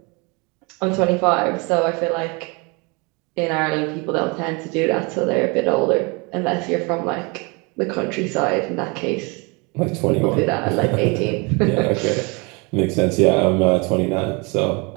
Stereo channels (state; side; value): quieter; left; 29.5 dB